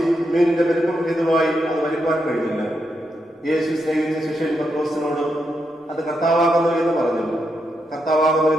മീനിന്റെ വലിപ്പം ഹേതുവായി അത് വലിപ്പാൻ കഴിഞ്ഞില്ല. യേശു സ്നേഹിച്ച ശിഷ്യൻ പത്രോസിനോട്, അത് കർത്താവാകുന്നു എന്ന് പറഞ്ഞു. കർത്താവാകുന്നു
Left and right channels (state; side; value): normal; both; correlation 0.83